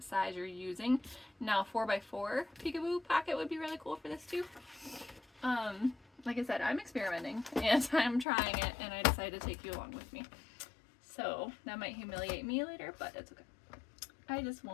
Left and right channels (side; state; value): right; drops out; at 8.2 s